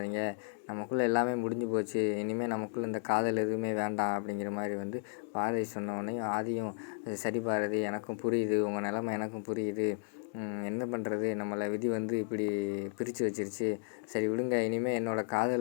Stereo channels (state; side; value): silent; right; 55 dB below the other